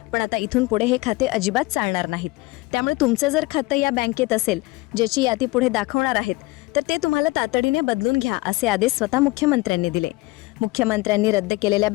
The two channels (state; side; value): quieter; right; 22.2 dB